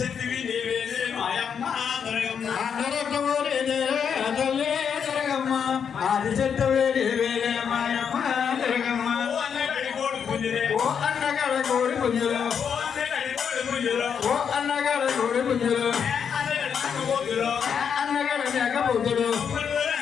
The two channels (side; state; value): right; quieter; 7.3 dB